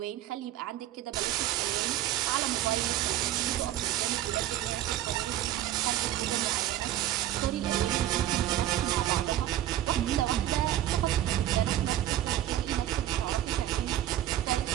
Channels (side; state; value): left; quieter; 12.9 dB